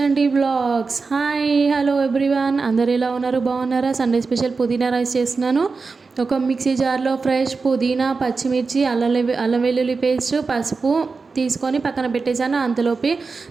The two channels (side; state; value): left; quieter; 4.4 dB